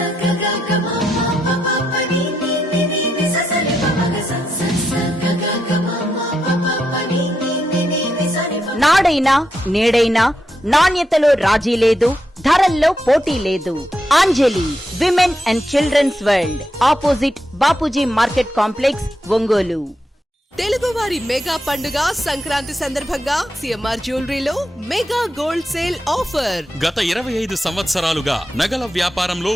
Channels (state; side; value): normal; both; correlation 0.83